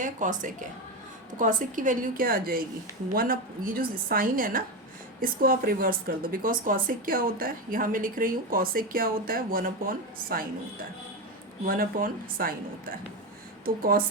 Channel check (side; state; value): both; normal; correlation 0.15